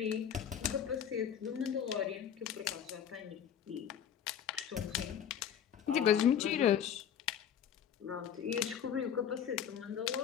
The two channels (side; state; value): right; quieter; 8.9 dB